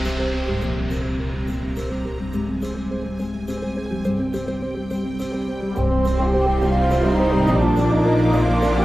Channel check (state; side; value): normal; both; correlation 0.95